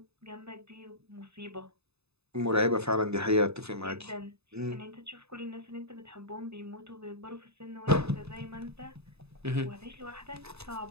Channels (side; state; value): left; late; 0.79 ms